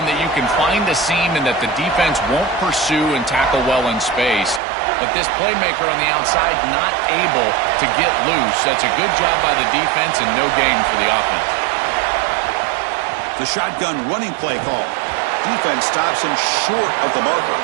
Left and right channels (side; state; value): left; drops out; at 4.6 s